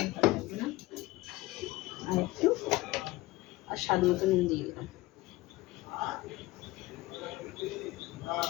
ভালো লাগবে না। আর স্বাদ মতো নুন দিয়ে দিলাম।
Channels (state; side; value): quieter; right; 19.3 dB